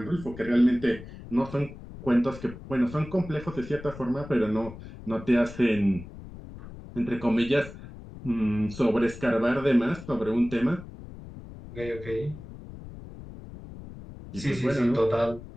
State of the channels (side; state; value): left; noise; rumble, 14 dB below the sound